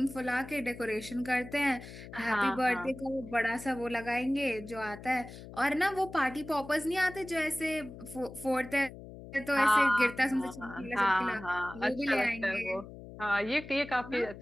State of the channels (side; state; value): left; noise; hum, 14 dB below the sound